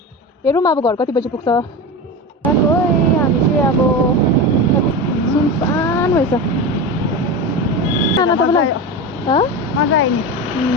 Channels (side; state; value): both; normal; correlation 0.23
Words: हेरौँ अब घर कति बजी पुग्छ हामी चाहिँ अब सुनसान भएछ नाना तपाईँलाई मजा आयो नि